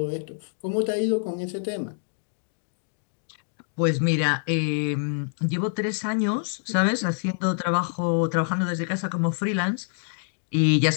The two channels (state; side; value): silent; right; digital silence